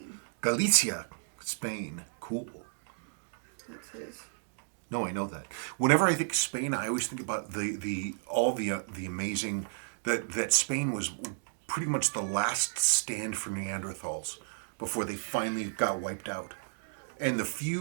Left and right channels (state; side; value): silent; left; digital silence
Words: Galicia, Spain. Cool. That's his. No, I know that. Whenever I think Spain, I always think about all the amazing that Spain was pretty much the last stand for Neanderthals before they finally got wiped out. And the